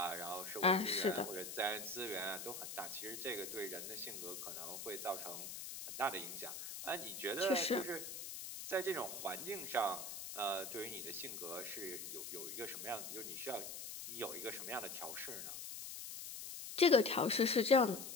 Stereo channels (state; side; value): noise; left; hiss, 8 dB below the sound